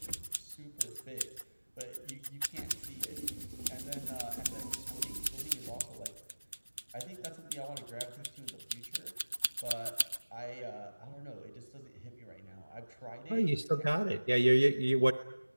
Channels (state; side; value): inverted; both; correlation -1.00